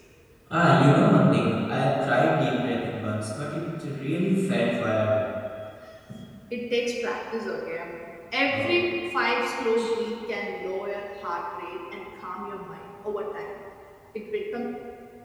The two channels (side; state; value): both; identical; correlation 1.00